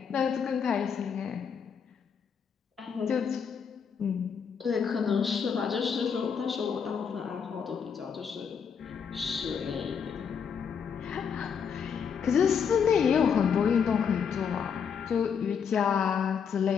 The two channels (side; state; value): right; quieter; 6.9 dB